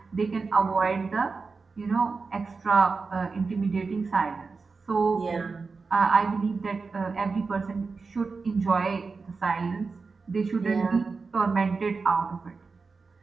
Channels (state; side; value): quieter; left; 4.5 dB